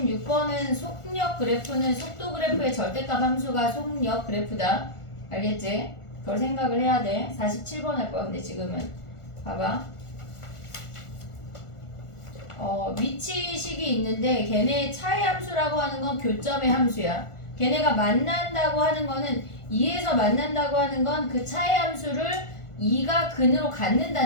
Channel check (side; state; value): right; late; 1.4 ms